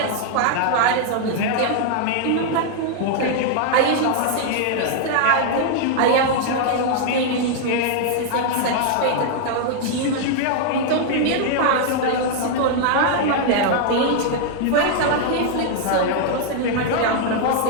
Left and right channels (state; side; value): different; both; correlation 0.00